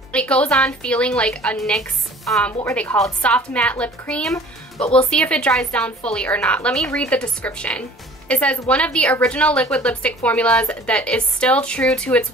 It goes on feeling like a NYX, what were they called? Soft matte lip cream, but we'll see if it dries down fully or not. Let me read the description. It says, one of the original liquid lipstick formulas that is still true to its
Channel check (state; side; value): normal; both; correlation 0.48